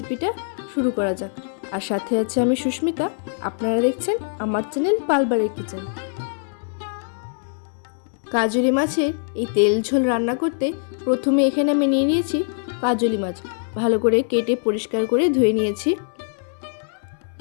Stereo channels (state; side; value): silent; right; digital silence